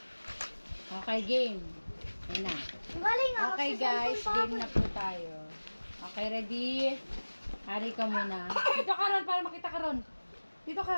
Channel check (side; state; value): both; inverted; correlation -1.00